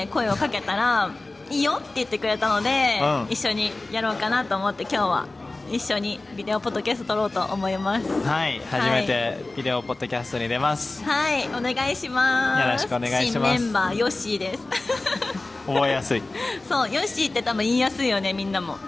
声をかけたらいいよって言ってくれたので、一緒にやろうかなと思って今日は一緒にビデオポッドキャスト撮ろうと思います。はい、初めてビデオポッドキャストに出ます。はい、お願いします。よろしくお願いします。新メンバーヨッシーです覚えやすいそう、ヨッシーって多分言いやすいよね、みんなも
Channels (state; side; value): quieter; right; 3.1 dB